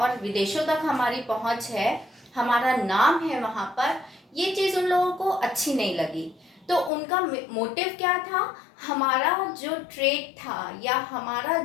विदेशों तक हमारी पहुंच है, हमारा नाम है वहाँ पर, ये चीज़ उन लोगों को अच्छी नहीं लगी। तो उनका मोटिव क्या था, हमारा जो ट्रेड था या हमारा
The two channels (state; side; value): drops out; right; at 6.9 s